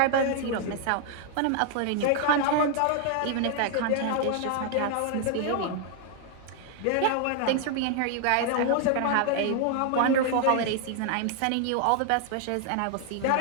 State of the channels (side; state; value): both; different; correlation 0.00